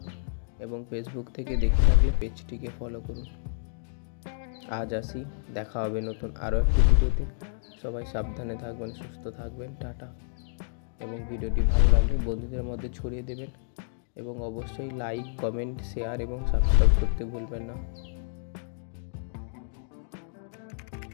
এবং ফেসবুক থেকে দেখে থাকলে পেজটিকে ফলো করুন। আজ আসি, দেখা হবে নতুন আরও একটি ভিডিওতে। সবাই সাবধানে থাকবেন, সুস্থ থাকবেন, টাটা। এবং ভিডিওটি ভালো লাগলে বন্ধুদের মধ্যে ছড়িয়ে দেবেন এবং অবশ্যই লাইক, কমেন্ট, শেয়ার এবং সাবস্ক্রাইব করতে ভুলবেন না।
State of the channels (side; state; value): right; silent; digital silence